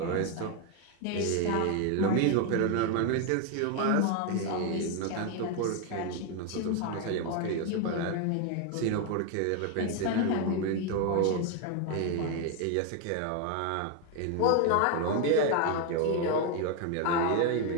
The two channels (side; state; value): both; different; correlation 0.01